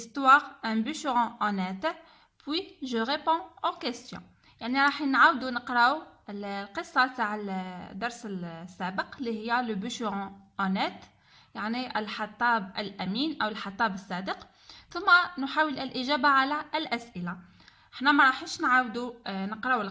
Un bûcheron honnête, puis je réponds aux questions. يعني راح نعاودوا نقراو القصة تاع الدرس السابق اللي هي Le bûcheron honnête، يعني الحطاب الأمين أو الحطاب الصادق، ثم نحاول الإجابة على الأسئلة. احنا ما راحش نعاودوا نقراو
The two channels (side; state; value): both; identical; correlation 1.00